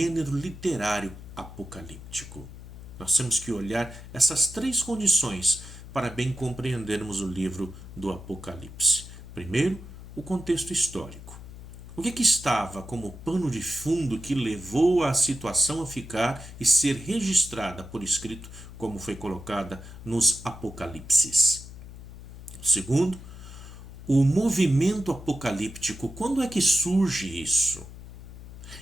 literário apocalíptico. Nós temos que olhar essas três condições para bem compreendermos o livro do Apocalipse. Primeiro, o contexto histórico. O que estava como pano de fundo que levou a situação a ficar e ser registrada por escrito, como foi colocada nos Apocalipses? Segundo, o movimento apocalíptico. Quando é que surge isso?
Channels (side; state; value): left; noise; hum, 14 dB below the sound